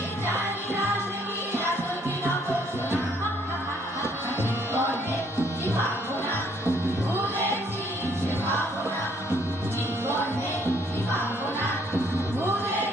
জানি না সে কি আসল কি নকল শোনা। জীবনে কি পাবো না, ভুলেছি সে ভাবনা। জীবনে কি পাবো না,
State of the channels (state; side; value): normal; both; correlation 0.65